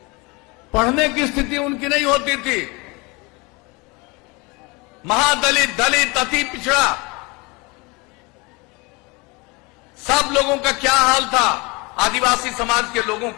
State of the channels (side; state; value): right; quieter; 26.6 dB